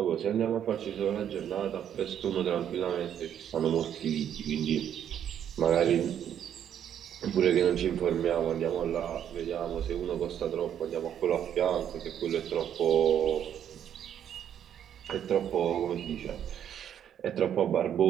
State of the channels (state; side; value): quieter; left; 9.6 dB